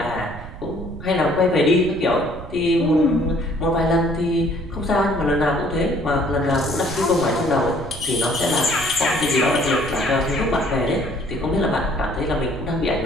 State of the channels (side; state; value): right; noise; rumble, 13 dB below the sound